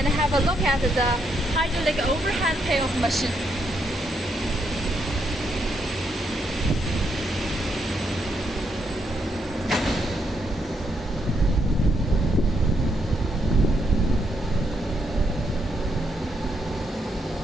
have a look at the hydraulic overhead payoff machine.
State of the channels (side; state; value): both; normal; correlation 0.77